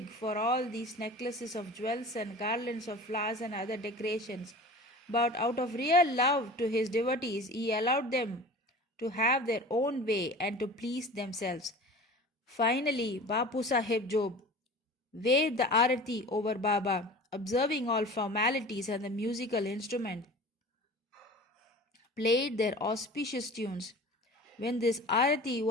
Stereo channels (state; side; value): normal; both; correlation 0.39